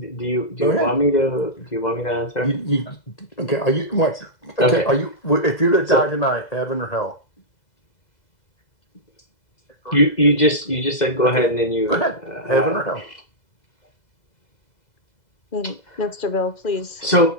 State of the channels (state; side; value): late; right; 2.0 ms